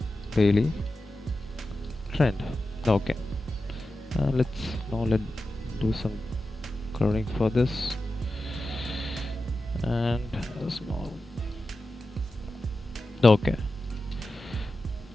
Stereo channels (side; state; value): both; normal; correlation 0.92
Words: daily trend. Okay, let's do some coloring for this, and a small. Okay,